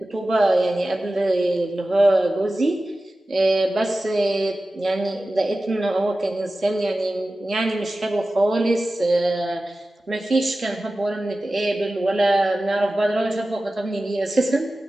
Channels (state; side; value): normal; both; correlation 0.95